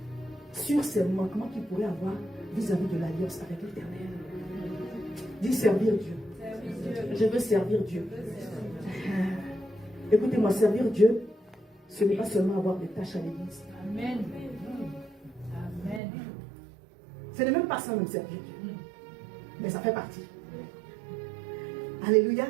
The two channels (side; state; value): left; drops out; at 16.0 s